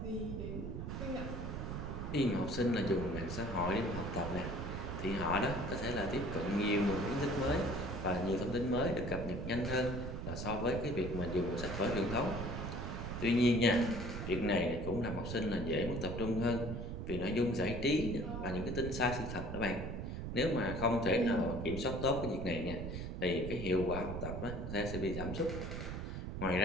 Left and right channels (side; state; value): right; noise; rumble, 5 dB below the sound